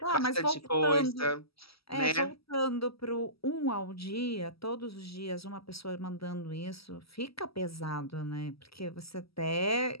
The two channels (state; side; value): late; right; 0.76 ms